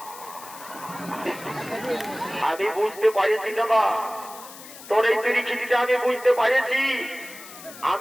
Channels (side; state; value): left; noise; hiss, 16 dB below the sound